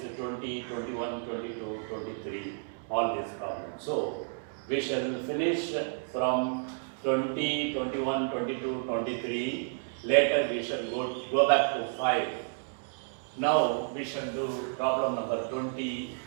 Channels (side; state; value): left; silent; digital silence